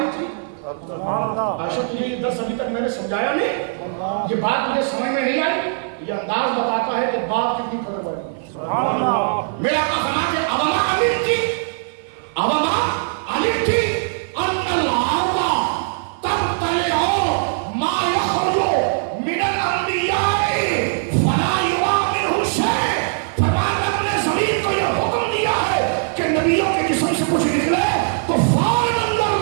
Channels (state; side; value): silent; left; 55 dB below the other